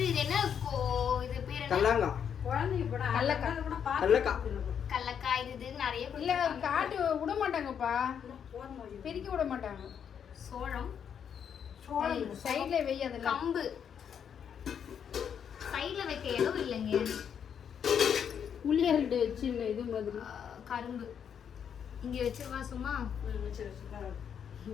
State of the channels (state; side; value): quieter; right; 8.0 dB